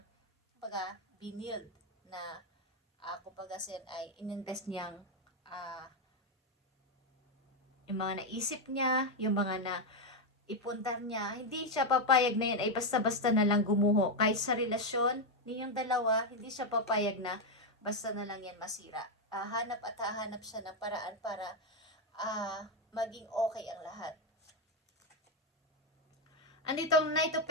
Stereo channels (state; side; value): normal; both; correlation 0.04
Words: binild na kumbaga ay ininvest niyang yung mga naisip niya, yung mga na ipundar niya, hindi siya papayag na yan ay basta-basta na lang gumuho. Kahit sa relasyon ninyong dalawa, hindi siya papayag na basta na lang yan masira. Hanap at hahanap siya ng paraan para maging okay ang lahat. Anditong Knight of